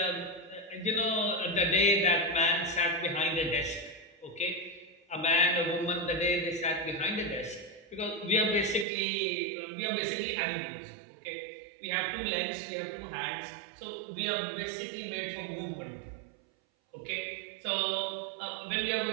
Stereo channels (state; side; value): drops out; left; at 8.8 s